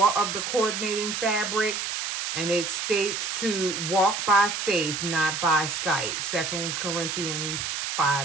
of the coordinating fabric. And it states to walk by faith, not by sight. 2 Corinthians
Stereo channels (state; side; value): noise; right; hiss, 3 dB below the sound